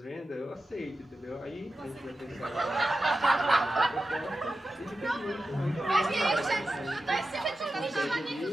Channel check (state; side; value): normal; both; correlation 0.92